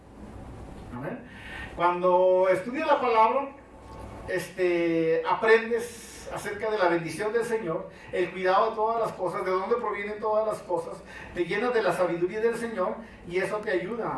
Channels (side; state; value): both; identical; correlation 1.00